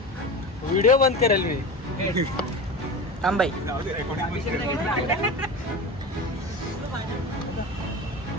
व्हिडिओ बंद करेल मी. थांबाई.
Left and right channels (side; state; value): both; normal; correlation 0.28